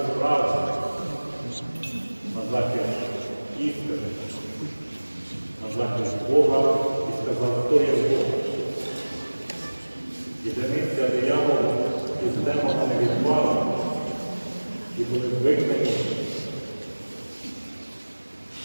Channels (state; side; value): inverted; both; correlation -1.00